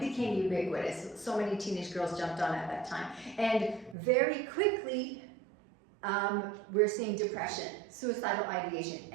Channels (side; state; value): left; drops out; at 4.0 s